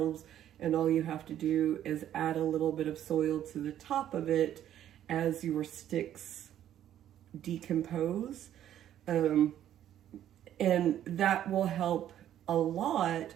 and all you have to do is add a little bit of soil to the top of it as your sticks decompose, and that will help a lot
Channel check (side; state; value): left; quieter; 11.2 dB